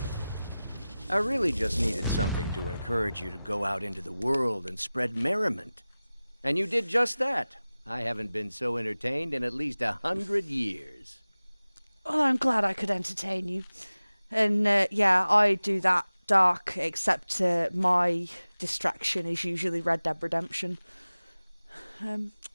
I really just needed something to encourage you to go out into the world and spread merriment. And you did just that. I haven't been so entertained in at least 100 years. Oh, I'm glad I could entertain you. And yeah, I do that dark, except my distraction is usually Red Dead Redemption.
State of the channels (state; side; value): inverted; both; correlation -0.97